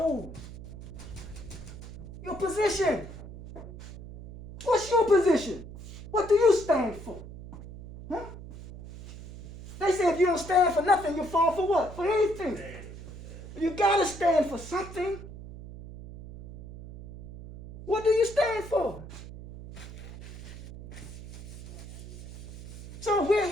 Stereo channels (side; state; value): right; noise; hum, 14 dB below the sound